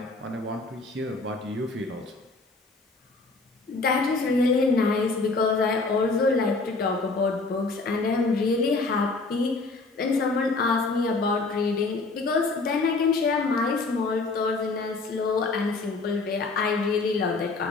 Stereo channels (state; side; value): quieter; right; 3.7 dB